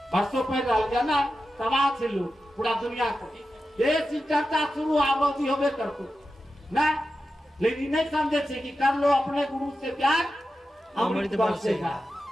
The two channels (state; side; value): normal; both; correlation 0.91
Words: बरसों पे रह गया ना समाज से लोग पूरा दुनिया को ये चर्चा शुरू आबादी होवे करको ना। लेकिन नहीं समझे कि कर लो अपने गुरु से प्यार अमृत बरसेगा